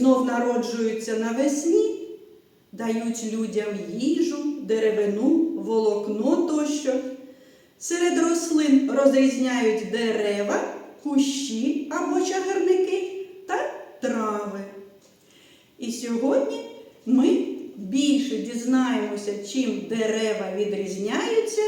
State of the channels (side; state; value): both; identical; correlation 1.00